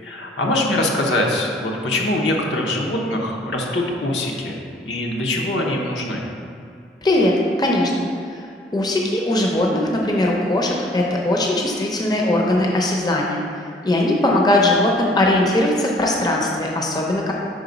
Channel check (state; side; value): normal; both; correlation 0.55